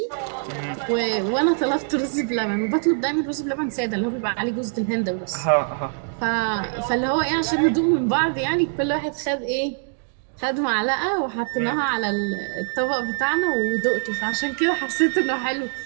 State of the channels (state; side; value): silent; left; digital silence